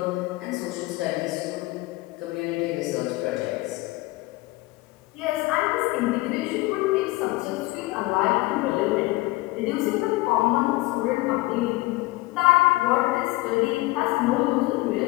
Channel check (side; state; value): right; quieter; 20.8 dB